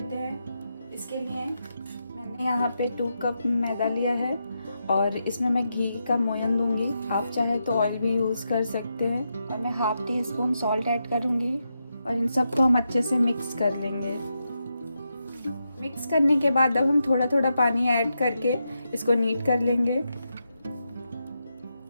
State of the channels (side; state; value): both; inverted; correlation -0.86